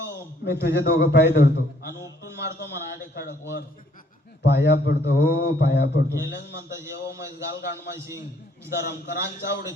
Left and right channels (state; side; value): normal; both; correlation 0.65